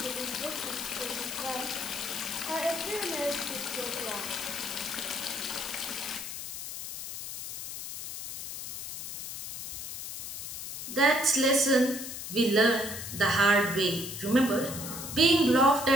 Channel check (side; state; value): left; noise; hiss, 8 dB below the sound